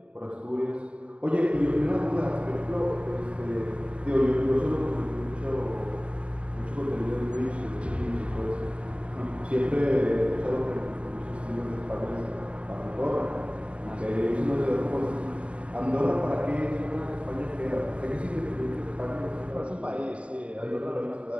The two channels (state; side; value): late; left; 0.061 ms